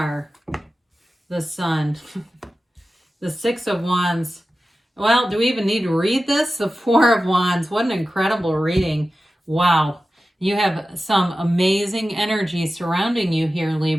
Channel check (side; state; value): both; normal; correlation 0.94